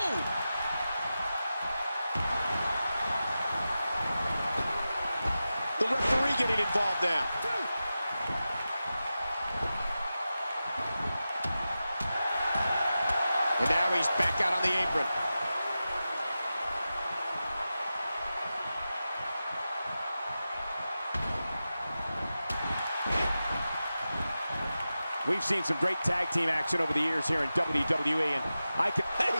The referee getting involved now. And now he's back out on the apron. We've seen some great tag team action over the years here in WWE, and I can... Hey,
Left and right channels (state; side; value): inverted; both; correlation -0.93